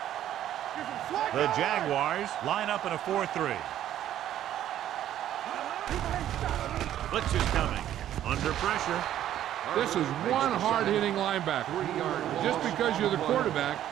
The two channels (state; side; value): quieter; left; 11.7 dB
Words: The Jaguars line up in a 4-3. Blitz is coming. Under pressure. This is one hard-hitting linebacker. Just because you're the quarterback,